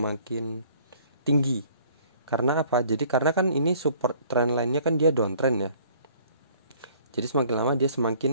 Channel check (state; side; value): inverted; both; correlation -0.56